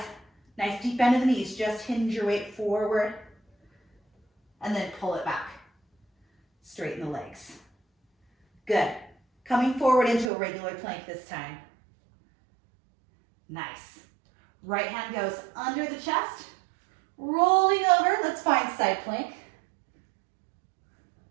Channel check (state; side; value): drops out; left; at 10.3 s